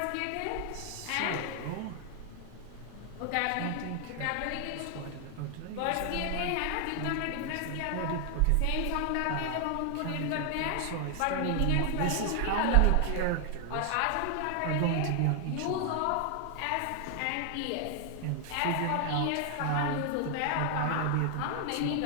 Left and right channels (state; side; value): different; both; correlation 0.00